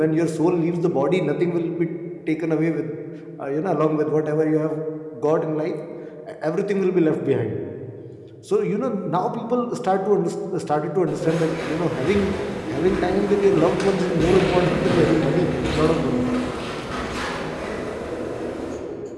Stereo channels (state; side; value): identical; both; correlation 1.00